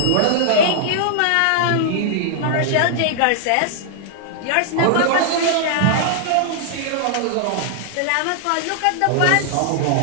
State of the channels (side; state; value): both; different; correlation -0.01